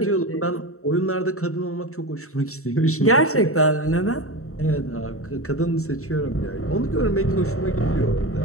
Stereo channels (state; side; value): late; right; 0.64 ms